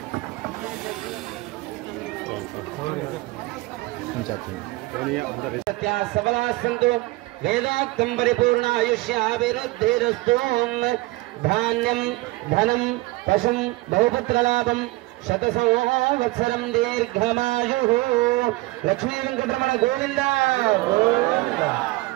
సబలా సంతు వేదాంతం పరిపూర్ణ ఆయుష్యాభివృద్ధిరస్తు. ధాన్యం ధనం పశుం బహుపుత్రలాభం శత సంవత్సరం దీర్ఘమాయు. లక్ష్మీ వెంకటరమణ గోవింద గోవింద.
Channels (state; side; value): quieter; left; 21.0 dB